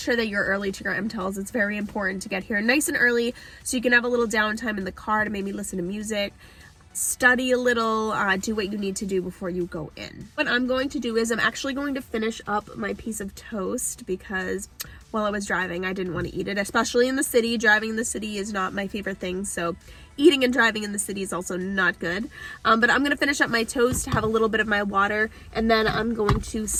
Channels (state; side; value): identical; both; correlation 1.00